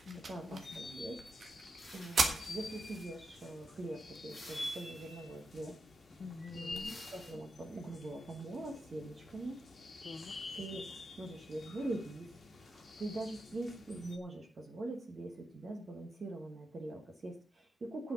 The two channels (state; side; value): normal; both; correlation 0.88